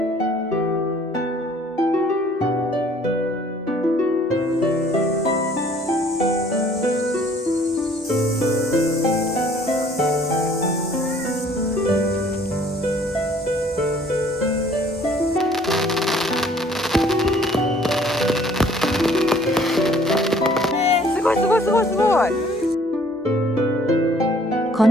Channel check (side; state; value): both; normal; correlation 0.57